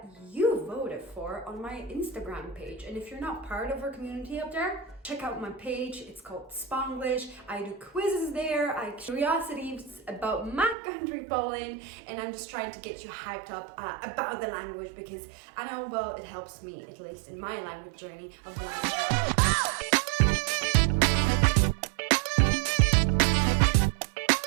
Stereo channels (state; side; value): drops out; left; at 10.8 s